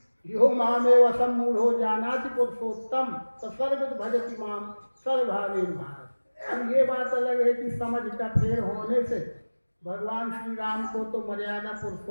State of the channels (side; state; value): both; inverted; correlation -1.00